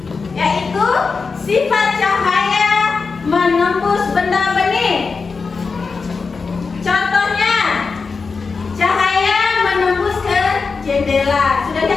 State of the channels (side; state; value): right; quieter; 4.7 dB